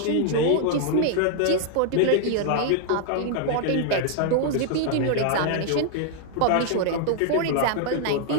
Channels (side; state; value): both; different; correlation 0.00